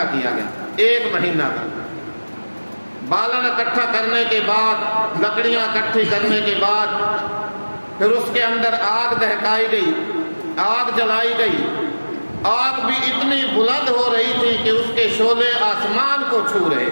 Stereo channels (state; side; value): inverted; both; correlation -1.00